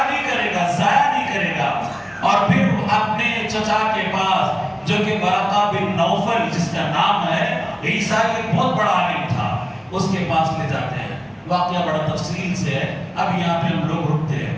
نہیں کرے گا, ضائع نہیں کرے گا. اور پھر اپنے چچا کے پاس جو کہ ورقہ بن نوفل جس کا نام ہے, عیسیٰ ایک بہت بڑا عالم تھا, اس کے پاس لے جاتے ہیں. واقعہ بڑا تفصیل سے ہے, اب یہاں پہ ہم لوگ رکتے ہیں.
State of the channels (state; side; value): identical; both; correlation 1.00